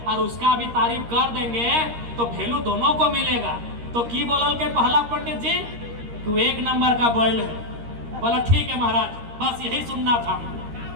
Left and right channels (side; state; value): left; late; 13 ms